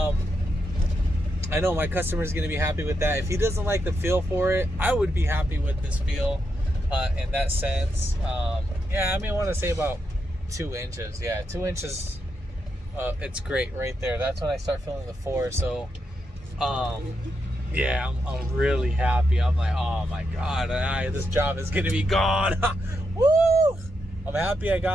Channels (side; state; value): both; normal; correlation 0.83